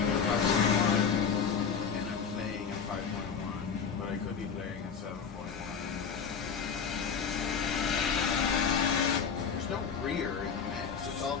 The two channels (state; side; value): quieter; right; 6.4 dB